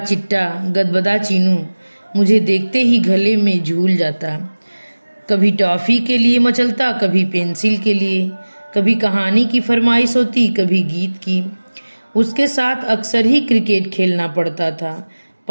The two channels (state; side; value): inverted; both; correlation -1.00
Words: गदबदा चीनू मुझे देखते ही गले में झूल जाता। कभी टॉफ़ी के लिए मचलता, कभी पेंसिल के लिए, कभी कहानी की फरमाइश होती, कभी गीत की। उसके साथ अक्सर ही क्रिकेट खेलना पड़ता था।